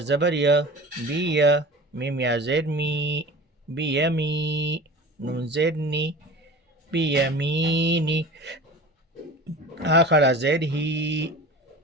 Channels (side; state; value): both; normal; correlation 0.37